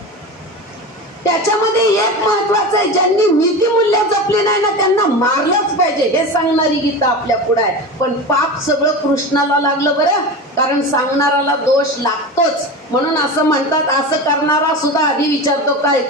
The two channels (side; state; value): both; normal; correlation 0.27